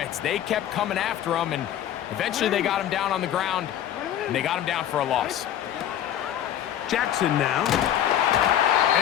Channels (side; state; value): right; quieter; 11.0 dB